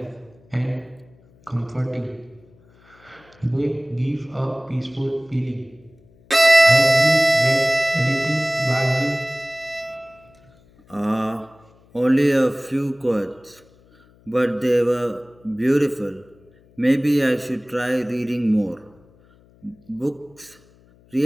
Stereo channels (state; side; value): noise; left; hum, 29 dB below the sound